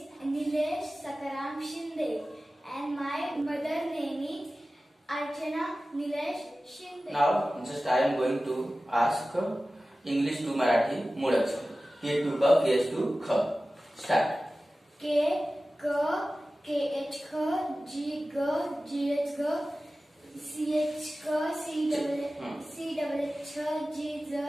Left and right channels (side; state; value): both; normal; correlation 0.96